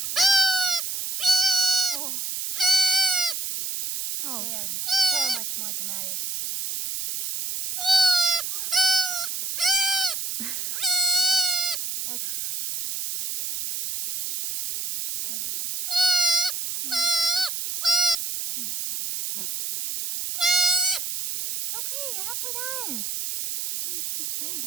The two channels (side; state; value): right; noise; hiss, 4 dB below the sound